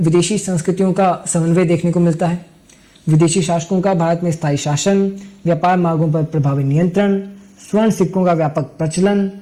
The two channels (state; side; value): identical; both; correlation 1.00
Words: संस्कृतियों का समन्वय देखने को मिलता है। विदेशी शासकों का भारत में स्थायी शासन, व्यापार मार्गों पर प्रभावी नियंत्रण, स्वर्ण सिक्कों का व्यापक प्रचलन,